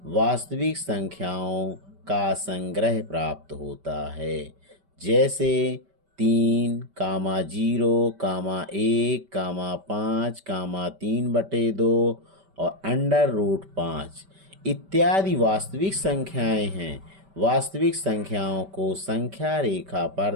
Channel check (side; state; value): left; late; 5.1 ms